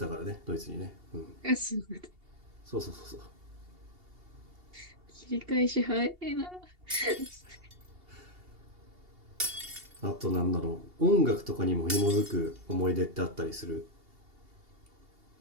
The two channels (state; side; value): late; left; 2.8 ms